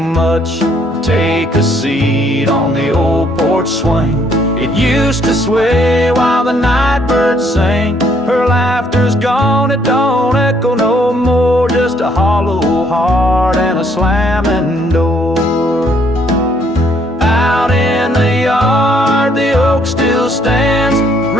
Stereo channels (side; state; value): both; normal; correlation 0.67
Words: Take a seat on the old porch swing. It used to sway while the night birds sang. Her laughter's gone, it don't echo no more, just a hollow heart and a slamming door. Out in the yard, the oak still stands.